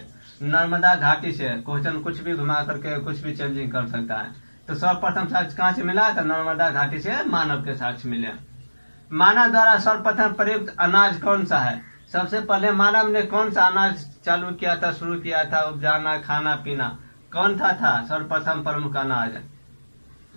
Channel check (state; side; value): inverted; both; correlation -1.00